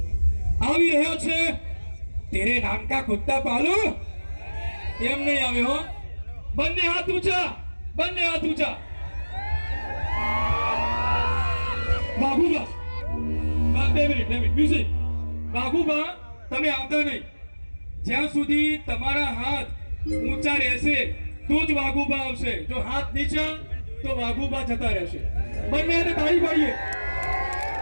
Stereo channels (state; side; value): inverted; both; correlation -1.00